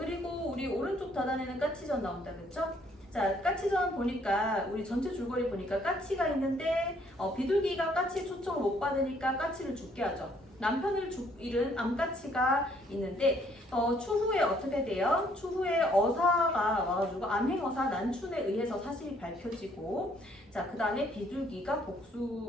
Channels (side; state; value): both; normal; correlation 0.65